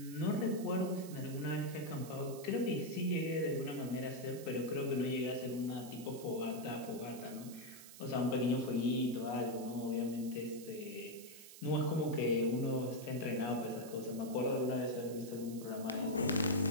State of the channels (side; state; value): right; noise; hiss, 16 dB below the sound